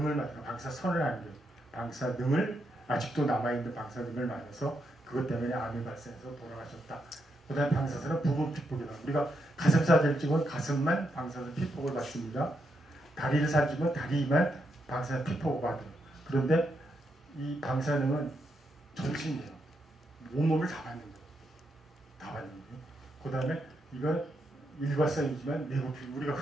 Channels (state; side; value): normal; both; correlation 0.81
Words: 맞아요. 방사선을 아니에요. 방사능을 아직도 남아있는 방사능을 맞아서 그것 때문에 암이 발생해서 돌아가셨다. 그다음에 방사선은 부분 피폭이다. 우리가 가슴 사진을 찍으면 가슴만 방사선 피폭을 받습니다. 다리를 사진은 다리만 방사선 피폭을 받아요. 그런데 이 방사능은 전신이에요. 온몸을 다 받는 거예요. 다 받는 거예요. 그 다음에 이건 일과성이지만 내부피, 우리가